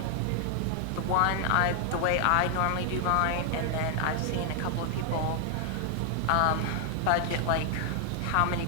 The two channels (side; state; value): both; different; correlation 0.00